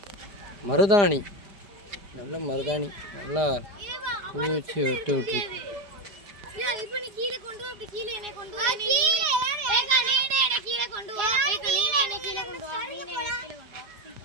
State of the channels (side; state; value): left; late; 5.1 ms